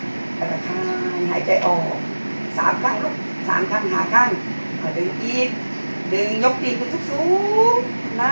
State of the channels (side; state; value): both; inverted; correlation -1.00